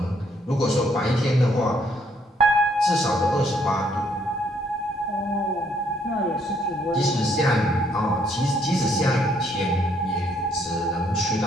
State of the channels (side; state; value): both; normal; correlation 0.69